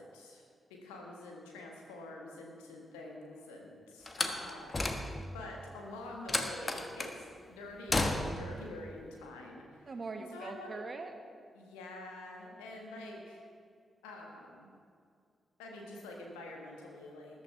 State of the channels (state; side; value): normal; both; correlation 0.86